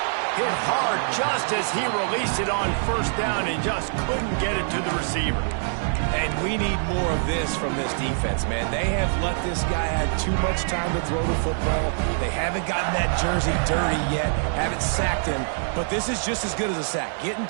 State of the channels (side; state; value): left; silent; digital silence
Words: Hit hard just as he released it on first down and just couldn't get it to the receiver. And we need more of this from this defense, man. They have let this guy have too much time to throw the football. They haven't gotten that jersey dirty yet, haven't sacked him, but this is just as good as a sack. Getting